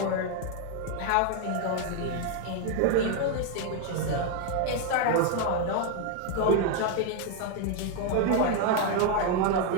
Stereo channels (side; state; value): both; different; correlation 0.00